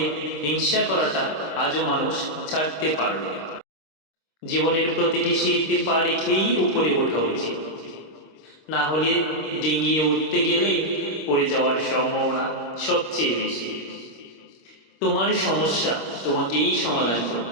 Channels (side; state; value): right; late; 26 ms